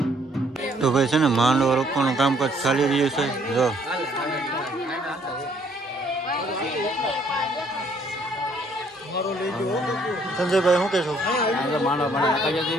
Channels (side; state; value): both; normal; correlation 0.65